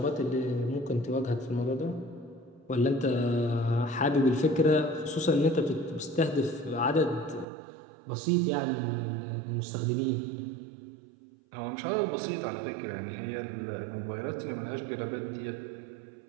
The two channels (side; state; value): left; drops out; at 7.5 s